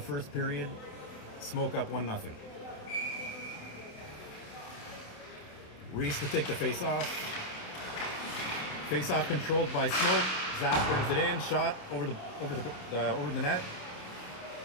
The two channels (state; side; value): late; right; 27 ms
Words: period. Smoke up 1-0. Reese to take the face-off. Face-off controlled by Smoke. Zach brings it in. Shot over the net.